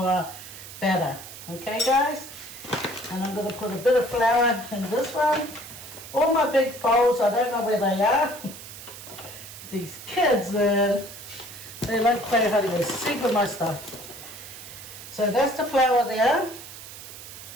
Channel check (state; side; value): noise; right; hiss, 14 dB below the sound